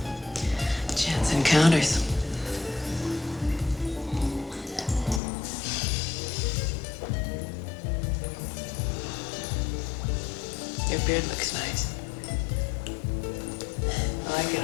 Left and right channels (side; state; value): right; drops out; at 5.2 s